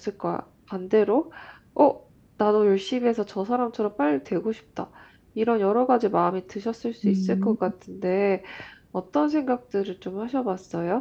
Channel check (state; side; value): identical; both; correlation 1.00